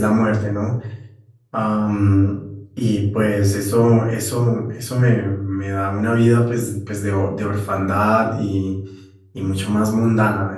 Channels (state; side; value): identical; both; correlation 1.00